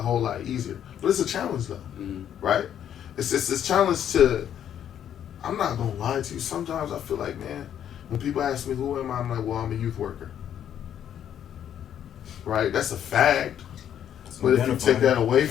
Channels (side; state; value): right; quieter; 9.8 dB